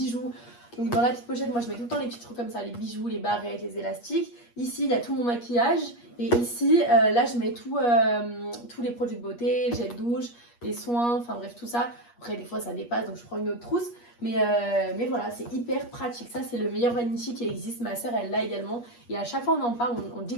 Donc dans la petite pochette, moi je mets tout le temps les petits trucs comme ça, les bijoux, les barrettes, les élastiques. Ici il y a tout mon maquillage et ici là je mets tous les produits de beauté, le gel douche, les soins, enfin bref tout ça. Après des fois ça dépasse donc je prends une autre trousse. Mais voilà, c'est hyper pratique. Ça, c'est le meilleur Vanity qui existe. Ma soeur, elle l'a également. Et à chaque fois, on en parle, on dit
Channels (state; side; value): late; right; 8.4 ms